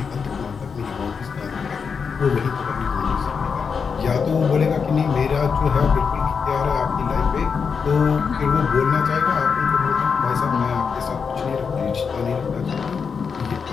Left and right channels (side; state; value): right; quieter; 5.9 dB